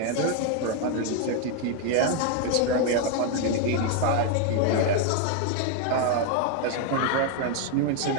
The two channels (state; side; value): different; both; correlation 0.01